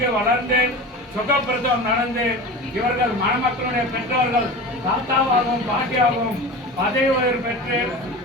வளர்ந்து சுகப்பிரசவம் நடந்து இவர்கள் மணமக்களுடைய பெற்றோர்கள் தாத்தாவாகவும் பாட்டியாகவும் பதவி உயர்வு பெற்று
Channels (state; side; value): normal; both; correlation 0.32